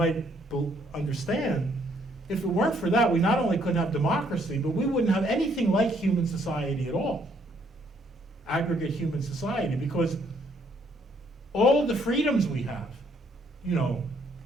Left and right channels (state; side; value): normal; both; correlation 0.68